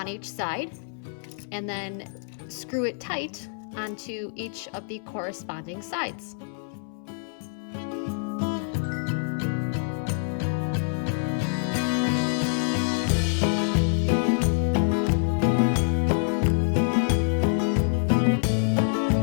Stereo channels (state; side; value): silent; right; 61 dB below the other